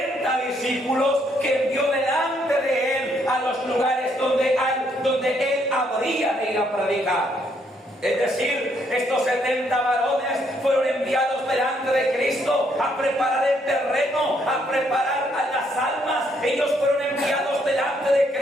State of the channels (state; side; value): normal; both; correlation 0.71